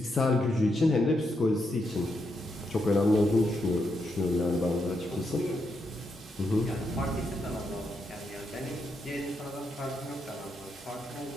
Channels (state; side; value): normal; both; correlation 0.81